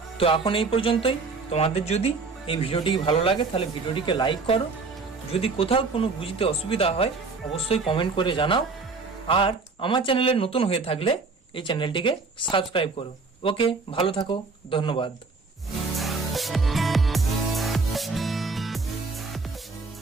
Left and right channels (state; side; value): quieter; left; 4.2 dB